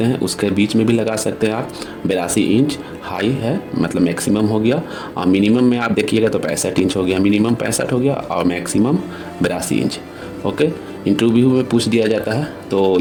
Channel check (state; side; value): identical; both; correlation 1.00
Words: हैं, उसके बीच में भी लगा सकते हैं आप। 82 इंच हाई है, मतलब मैक्सिमम हो गया, और मिनिमम में आप देखिएगा तो 65 इंच हो गया, मिनिमम 65 हो गया और मैक्सिमम 82 इंच। ओके, इंटरव्यू में पूछ दिया जाता है तो